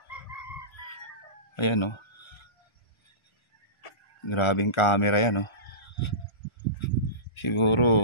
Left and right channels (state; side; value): late; right; 1.4 ms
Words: Ayan oh. Grabing camera yan oh.